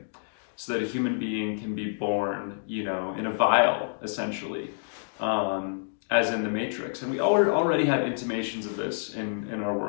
so that a human being can be born, you know, in a vial, essentially, as in the Matrix. And we already have intimations of this in our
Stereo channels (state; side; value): silent; right; digital silence